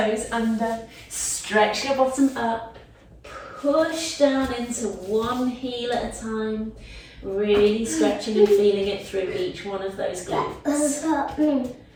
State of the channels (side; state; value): both; identical; correlation 1.00